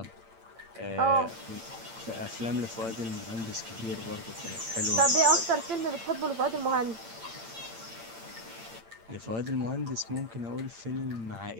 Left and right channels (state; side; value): late; left; 8.8 ms